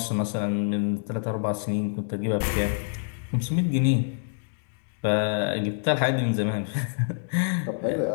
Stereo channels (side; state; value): right; silent; digital silence